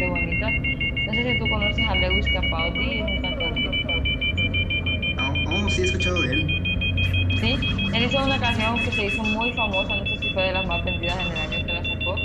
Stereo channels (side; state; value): both; identical; correlation 1.00